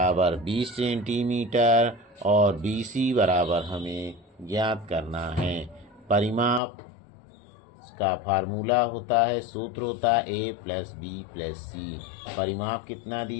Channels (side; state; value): right; drops out; at 6.6 s